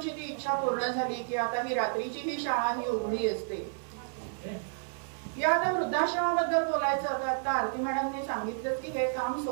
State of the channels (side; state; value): left; silent; digital silence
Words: ती इच्छा पूर्ण झाली की आता ही रात्रीची ही शाळा ही उघडी असते. या आता वृद्धाश्रमाबद्दल बोलायचं होतं. आता आरती मॅडमने सांगितलं की हे काम